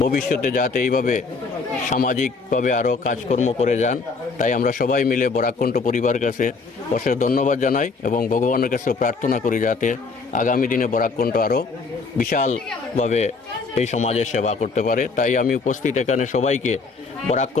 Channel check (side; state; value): right; quieter; 4.4 dB